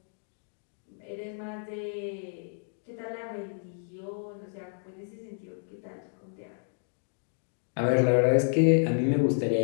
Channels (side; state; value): right; silent; digital silence